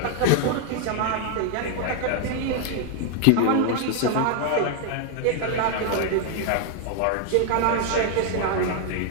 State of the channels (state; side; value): different; both; correlation 0.00